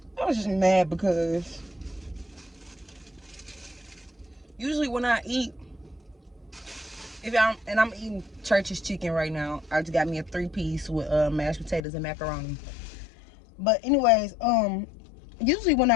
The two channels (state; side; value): drops out; right; at 11.8 s